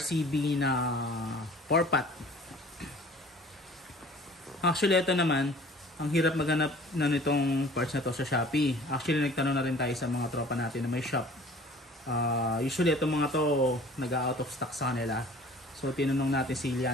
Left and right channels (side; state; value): both; normal; correlation 0.48